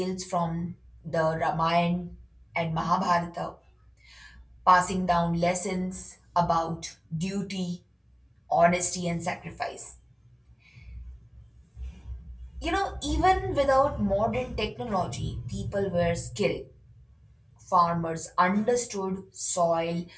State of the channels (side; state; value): both; identical; correlation 1.00